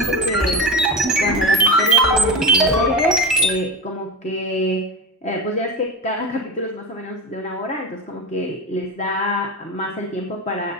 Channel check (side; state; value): both; normal; correlation 0.23